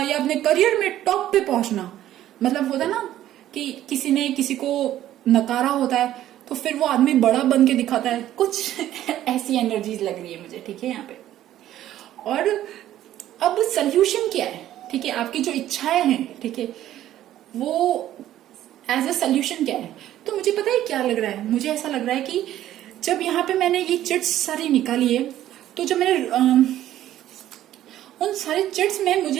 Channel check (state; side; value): quieter; left; 12.8 dB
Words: या अपने करियर में टॉप पे पहुंचना। मतलब होता ना कि किसी ने किसी को नकारा होता है तो फिर वो आदमी बड़ा बन के दिखाता है, कुछ ऐसी एनर्जीज लग रही है मुझे, ठीक है यहाँ पे। और अब सोल्यूशन क्या है, ठीक है, आपकी जो इच्छाएं हैं, ठीक है, वो एज अ सोल्यूशन क्या है। तो मुझे पता है क्या लग रहा है, मुझे ऐसा लग रहा है कि जब यहाँ पे मैंने ये चिट्स सारी निकाली है, तो जब मैंने उन सारे चिट्स में